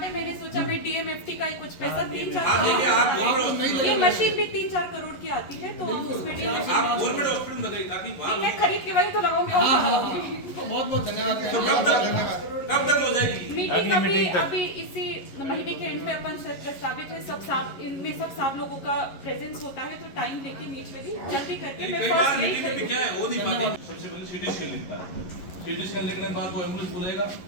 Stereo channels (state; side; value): late; right; 11 ms